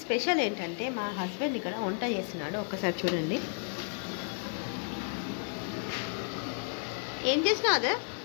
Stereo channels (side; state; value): right; silent; 56 dB below the other